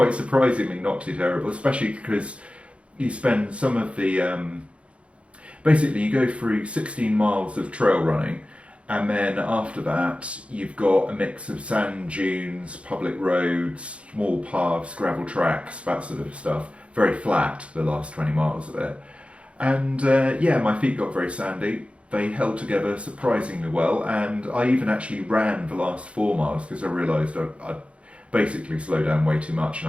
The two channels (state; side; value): late; left; 0.061 ms